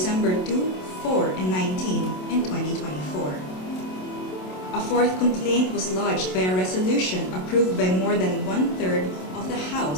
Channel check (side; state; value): right; late; 27 ms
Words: 2, 4, and 19 in 2024. A 4th complaint was lodged by a resolution approved by more than 1/3 of the